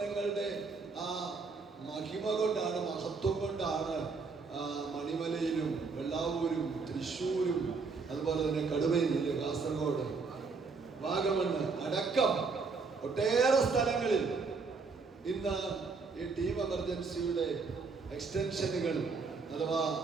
ആ മഹിമ കൊണ്ടാണ്, മഹത്വം കൊണ്ടാണ് മണിമലയിലും വെള്ളാവൂരും തൃശ്ശൂരും അതുപോലെ തന്നെ കടുവയിലെ കാസർഗോഡ്, വാഗമണ്ണ് അടക്കം ഒട്ടേറെ സ്ഥലങ്ങളിൽ ഇന്ന് ഈ ടീം എമർജൻസിയുടെ എക്സ്റ്റൻഷനുകൾ അഥവാ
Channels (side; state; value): left; quieter; 4.6 dB